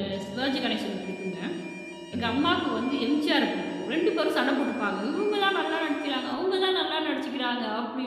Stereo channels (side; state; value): both; identical; correlation 1.00